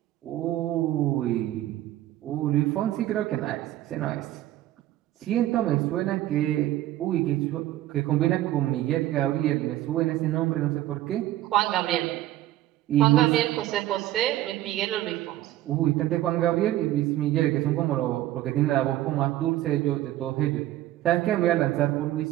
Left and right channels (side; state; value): left; quieter; 14.5 dB